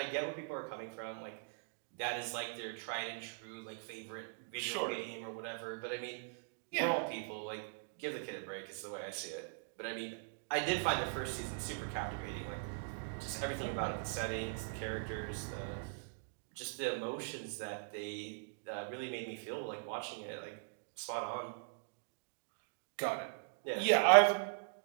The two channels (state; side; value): silent; left; digital silence